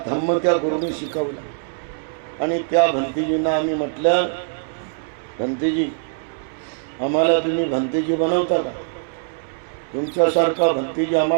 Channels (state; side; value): silent; left; 64 dB below the other